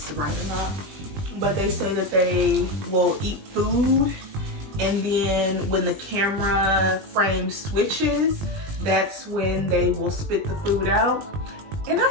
is right or not, but they say that they will eat food and then when the camera frame switches, that's when they will spit the food out. And I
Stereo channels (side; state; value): left; late; 20 ms